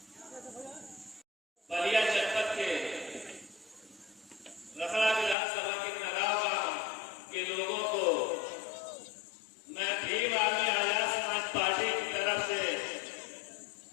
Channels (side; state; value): right; drops out; at 5.4 s